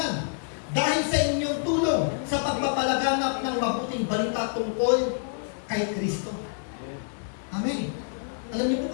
Dahil sa inyong tulong sa pagpapalaganap ng mabuting balita tungkol kay Kristo. Amen. Alam niyo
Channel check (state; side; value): silent; right; digital silence